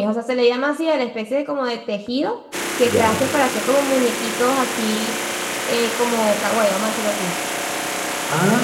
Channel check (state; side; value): identical; both; correlation 1.00